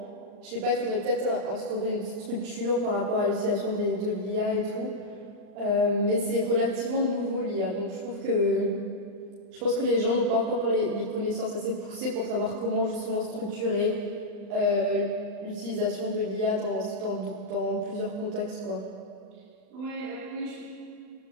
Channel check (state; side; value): late; left; 39 ms